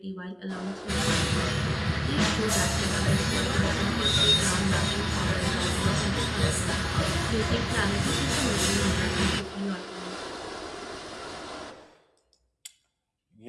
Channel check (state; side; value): identical; both; correlation 1.00